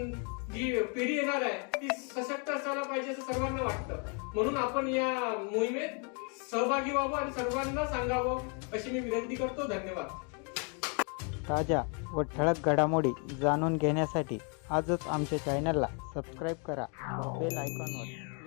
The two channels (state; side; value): quieter; right; 37.5 dB